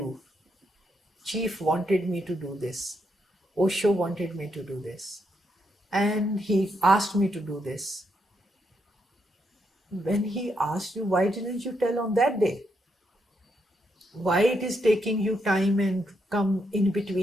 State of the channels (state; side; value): normal; both; correlation 0.79